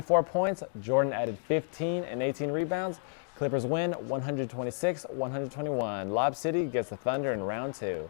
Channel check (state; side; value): silent; right; digital silence